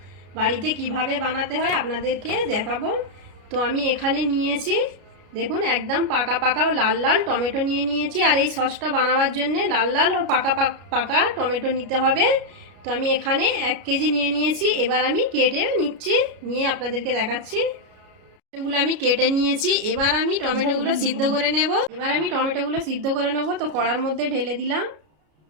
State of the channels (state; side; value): late; left; 33 ms